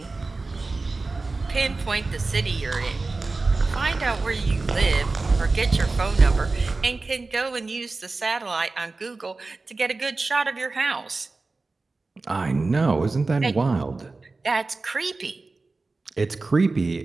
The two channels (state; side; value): quieter; left; 3.6 dB